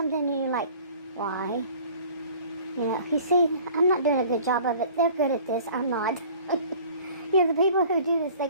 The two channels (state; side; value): inverted; both; correlation -0.48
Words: and you're like, why? You see, I'm not doing a good job of it. They're good at this. I'm not. The people who do this, they